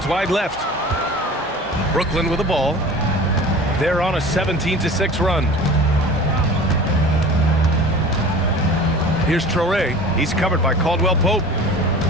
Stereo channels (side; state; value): both; normal; correlation 0.40